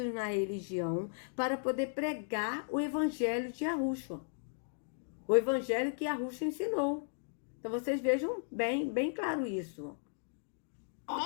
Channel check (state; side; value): silent; right; digital silence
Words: na religião, para poder pregar o evangelho de Yahushua. O evangelho que Yahushua ensinou. Então vocês vejam bem claro isso.